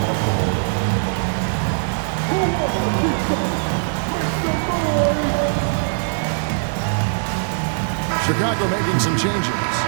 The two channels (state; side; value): silent; left; digital silence